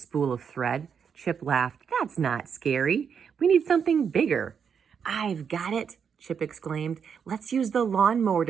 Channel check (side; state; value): left; quieter; 7.0 dB